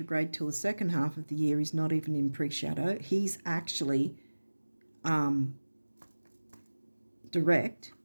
till the second half of the year. He's not even in pre-shadow. He's actually direct.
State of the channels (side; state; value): both; inverted; correlation -1.00